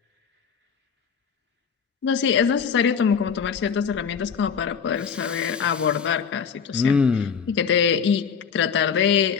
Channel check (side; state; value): right; quieter; 6.6 dB